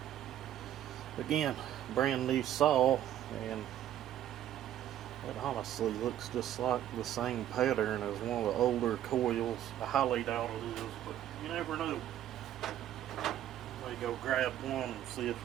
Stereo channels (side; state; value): left; quieter; 11.7 dB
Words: Again, brand new saw, and it honestly looks just like the same pattern as one of the older coils. I highly doubt it is, but you never know. May go grab one and see